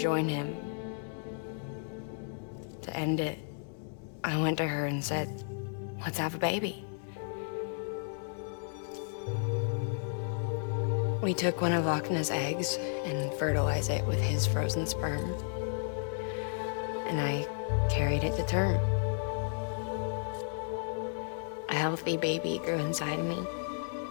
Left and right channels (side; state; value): right; silent; digital silence